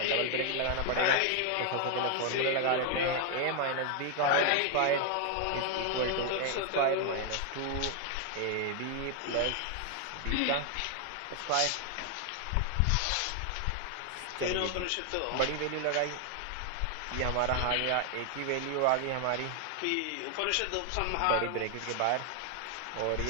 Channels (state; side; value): different; both; correlation 0.00